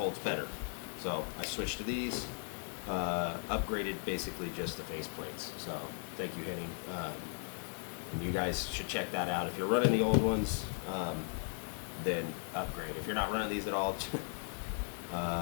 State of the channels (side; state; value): right; silent; 53 dB below the other